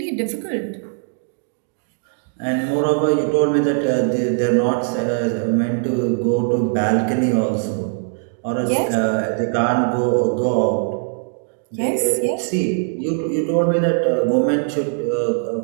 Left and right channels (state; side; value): silent; left; digital silence